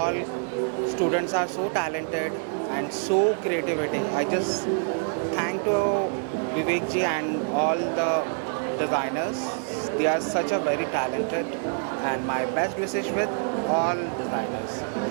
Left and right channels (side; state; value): left; silent; 59 dB below the other